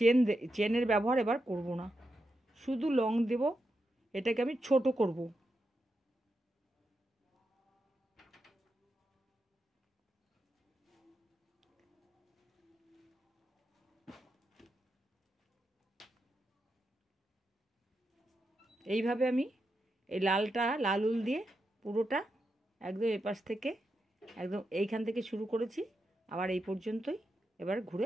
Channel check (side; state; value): both; normal; correlation 0.86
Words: চেনের ব্যবহার এবার করব না, শুধু লং দেব। এটাকে আমি ছোট করব। এইভাবে আমি এই লাল উল দিয়ে পুরোটা একদম এপাশ থেকে একদম এইখান থেকে শুরু করেছি, আবার এই পর্যন্তই এবার